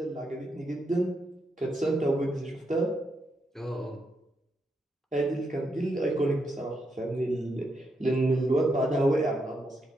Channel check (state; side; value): normal; both; correlation 0.81